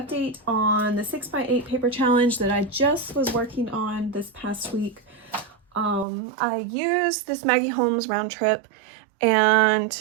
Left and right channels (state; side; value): drops out; left; at 6.1 s